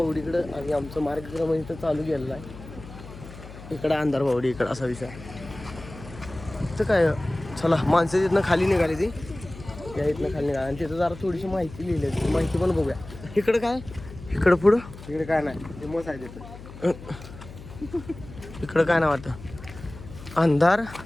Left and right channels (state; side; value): noise; left; hum, 15 dB below the sound